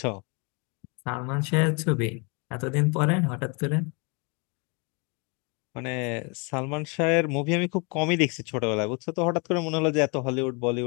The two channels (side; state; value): right; quieter; 32.9 dB